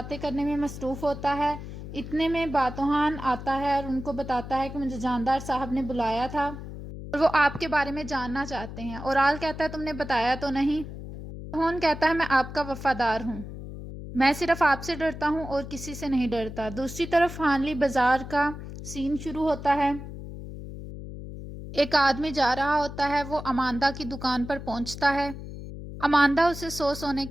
کرنے میں مصروف ہوتا ہے۔ اتنے میں باتوحان آتا ہے اور ان کو بتاتا ہے کہ مجھے جاندار صاحب نے بلایا تھا اور وہ آپ کے بارے میں جاننا چاہتے ہیں۔ اورال کہتا ہے تم نے بتایا تو نہیں؟ باتوحان کہتا ہے میں آپ کا وفادار ہوں، میں صرف آپ سے ڈرتا ہوں اور کسی سے نہیں ڈرتا۔ دوسری طرف ہانلی بازار کا سین شروع ہوتا ہے۔ ایک آدمی جا رہا ہوتا ہے، وہ اماندہ کی دکان پر پہنچتا ہے۔ اماندہ اسے 100 سونے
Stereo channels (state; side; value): noise; left; hum, 10 dB below the sound